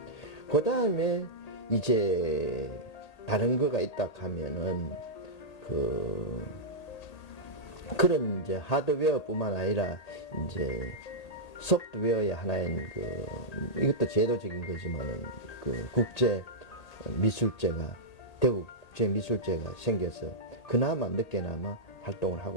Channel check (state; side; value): late; right; 1.8 ms